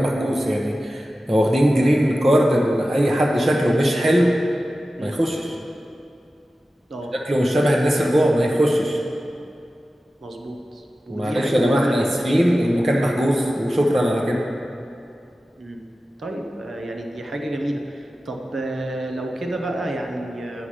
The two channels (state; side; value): normal; both; correlation 0.94